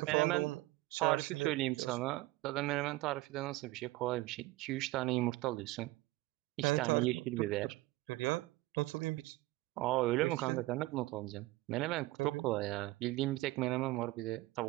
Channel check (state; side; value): quieter; left; 19.4 dB